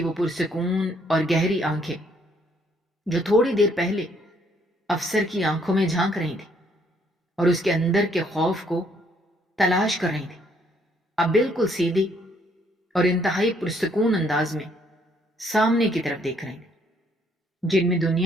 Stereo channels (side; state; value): both; normal; correlation 0.67